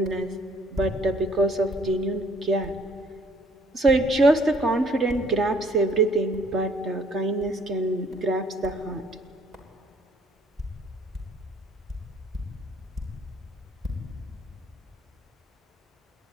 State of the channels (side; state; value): both; normal; correlation 0.61